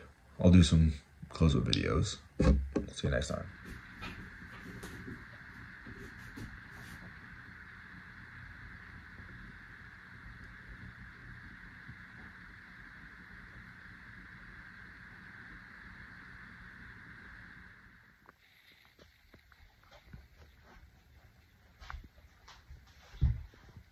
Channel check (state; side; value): identical; both; correlation 1.00